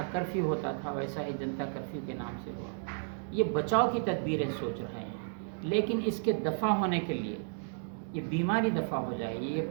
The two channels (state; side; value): silent; left; digital silence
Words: کرفیو ہوتا تھا ویسا ہی جنتا کرفیو کے نام سے ہوا۔ یہ بچاؤ کی تدبیریں سوچ رہے ہیں، لیکن اس کے دفع ہونے کے لیے، یہ بیماری دفع ہو جائے، یہ